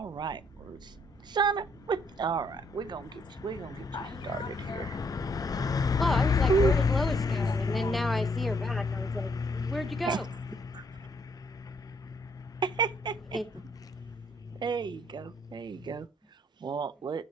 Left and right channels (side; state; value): both; normal; correlation 0.69